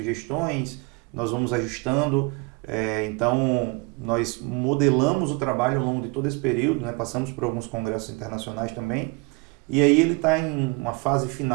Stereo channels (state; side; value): quieter; left; 28.6 dB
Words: nós vamos ajustando, então nós modelamos o trabalho ao longo de todo esse período, né? Passamos por alguns congressos internacionais também, e aí ele está em uma fase